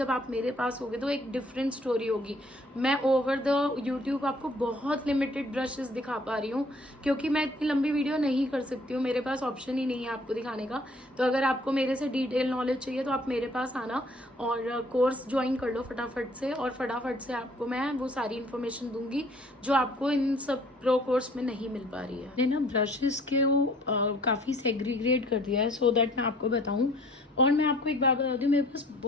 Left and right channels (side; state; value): both; normal; correlation 0.57